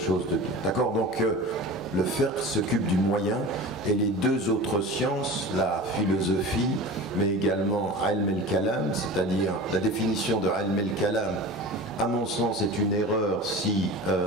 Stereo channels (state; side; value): normal; both; correlation 0.34